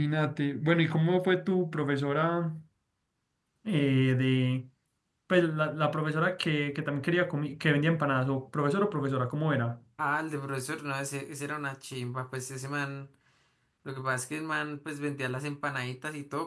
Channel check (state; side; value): identical; both; correlation 1.00